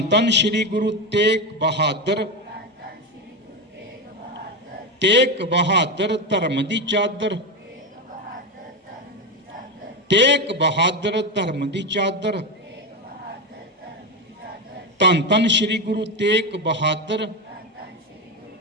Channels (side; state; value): both; normal; correlation 0.13